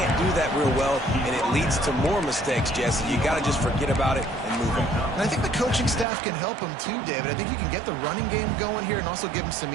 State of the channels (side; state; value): left; drops out; at 6.1 s